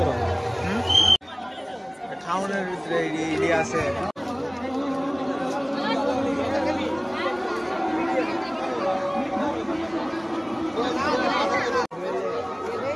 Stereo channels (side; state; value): both; identical; correlation 1.00